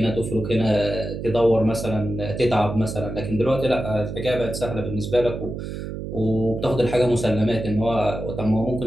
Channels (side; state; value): right; noise; hum, 7 dB below the sound